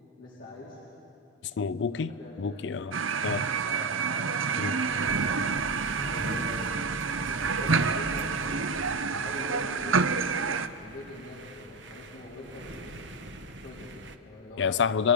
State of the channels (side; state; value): both; normal; correlation 0.14